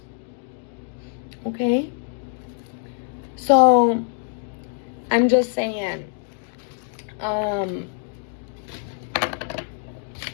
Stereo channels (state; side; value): silent; right; digital silence